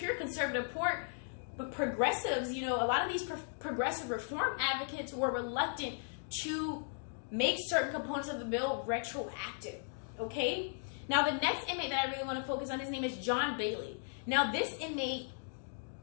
conservative support, but progressives, a lot of these progressive reform advocates were reluctant to make certain components of the bill retroactive. Okay. Now, the next inmate that I really want to focus on, his name is John Bailey. Now, this inmate,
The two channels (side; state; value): right; silent; digital silence